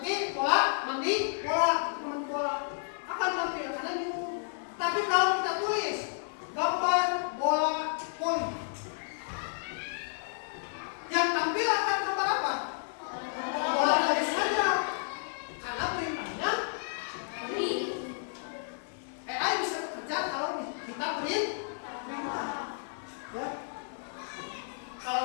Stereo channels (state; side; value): silent; right; digital silence